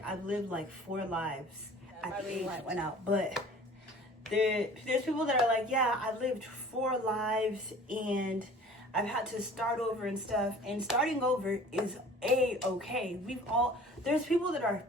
I've lived like 4 lives at the age I went out. But there's people that are like, yeah, I've lived 4 lives and I've had to start over and stuff. And starting over is okay. There's people that are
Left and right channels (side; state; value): both; normal; correlation 0.46